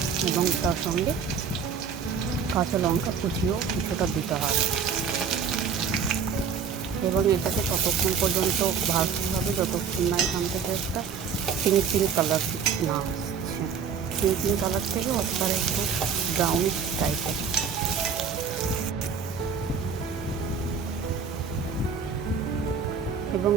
এবং তার সঙ্গে কাঁচা লঙ্কা কুচিও কিছুটা দিতে হবে। এবং এটাকে ততক্ষণ পর্যন্ত ভাজতে হবে যতক্ষণ না এখান থেকে একটা পিঙ্ক কালার না আসছে। পিঙ্ক কালার থেকে অতবার একটু ব্রাউনিশ টাইপের। এবং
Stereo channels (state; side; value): quieter; left; 6.3 dB